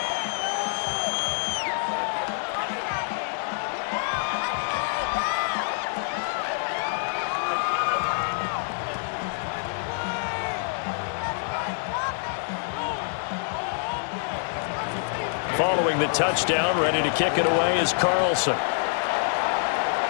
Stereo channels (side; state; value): right; silent; digital silence